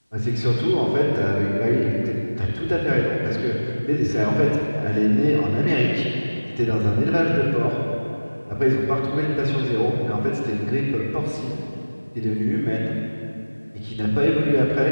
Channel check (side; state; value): both; inverted; correlation -1.00